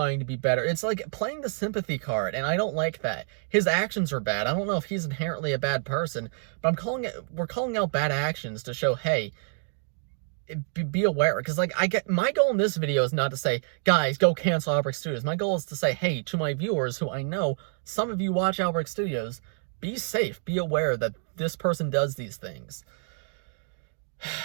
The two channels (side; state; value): left; silent; 60 dB below the other